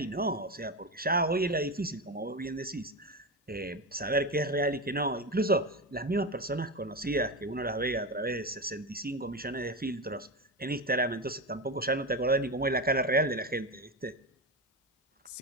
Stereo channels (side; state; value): both; normal; correlation 0.17